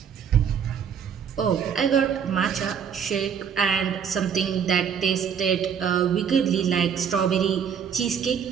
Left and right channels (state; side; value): quieter; left; 7.5 dB